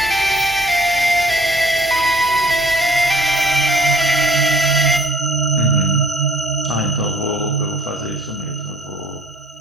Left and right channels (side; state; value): both; normal; correlation 0.55